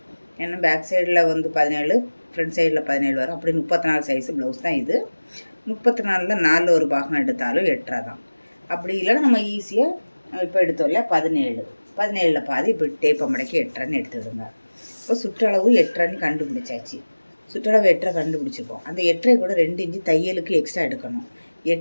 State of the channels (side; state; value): both; inverted; correlation -1.00